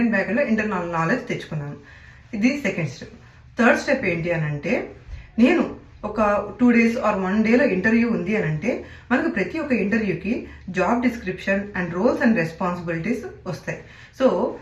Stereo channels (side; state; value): both; identical; correlation 1.00